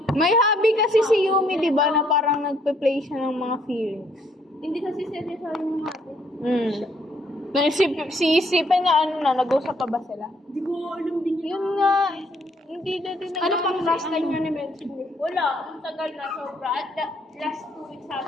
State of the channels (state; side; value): normal; both; correlation 0.68